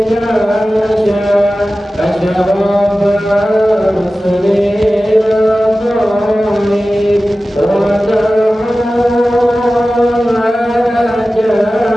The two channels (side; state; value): both; normal; correlation 0.95